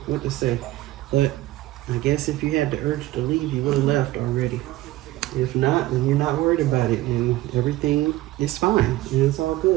what to say. But I guess if you had the urge to leave, you would have left already. If not, then you're not worried about it and everything is fine and it's all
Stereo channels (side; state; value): left; quieter; 16.7 dB